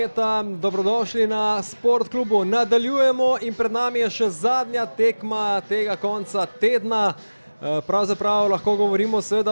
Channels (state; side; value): inverted; both; correlation -1.00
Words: Dobrodošli na Sport klubu. Nadaljujemo in pred nami je še zadnja tekma tega konca tedna. Pravzaprav lahko govorimo